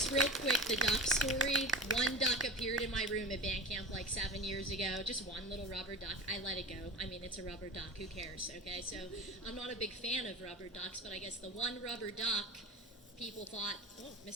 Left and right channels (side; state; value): both; normal; correlation 0.31